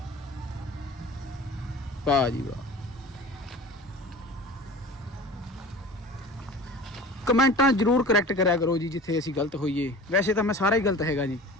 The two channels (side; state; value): both; normal; correlation 0.39